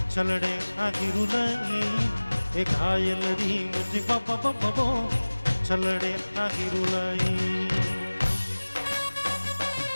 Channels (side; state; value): both; inverted; correlation -1.00